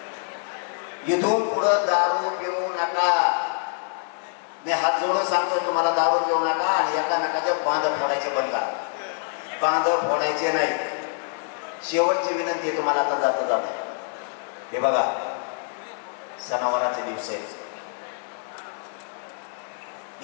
इथून पुढं दारू पिऊ नका. मी हात जोडून सांगतोय तुम्हाला, दारू पिऊ नका आणि एकामेकाचं बांध फोडायचे बंद करा. बांध फोडायचे नाही. शेवटची विनंती आहे तुम्हाला आता जाता जाता. हे बघा, सणावाराचे दिवस आहेत.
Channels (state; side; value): silent; right; 61 dB below the other